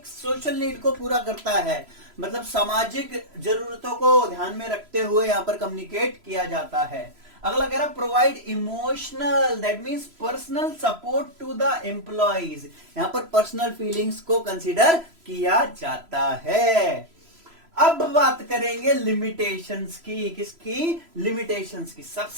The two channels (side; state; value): left; late; 3.0 ms